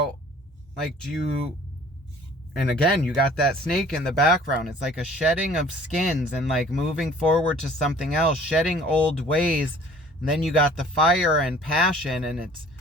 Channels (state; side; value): normal; both; correlation 0.51